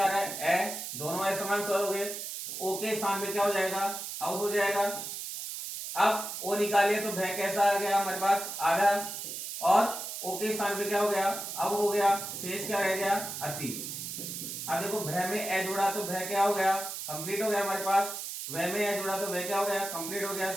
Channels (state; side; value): noise; right; hiss, 6 dB below the sound